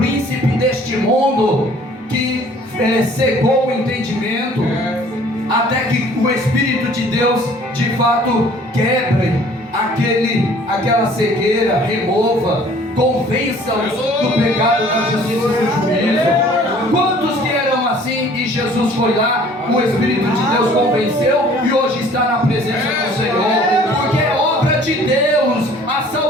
deste mundo que cegou o entendimento, até que o Espírito de Deus de fato quebre aquela cegueira, remova, convença-os do pecado, da justiça e do juízo. Quantos que eram assim e Jesus foi lá, o Espírito de Deus convenceu e hoje está na presença do Senhor? Porque é obra de Deus, a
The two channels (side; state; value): both; normal; correlation 0.53